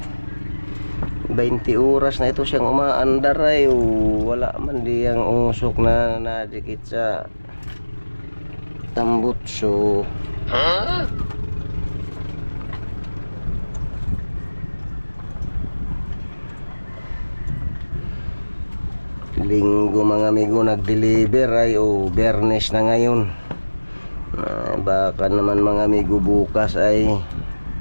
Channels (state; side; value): inverted; both; correlation -1.00